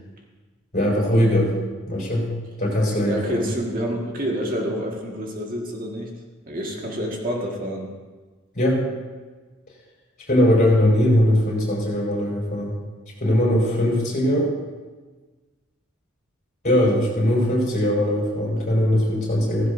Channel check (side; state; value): both; normal; correlation 0.67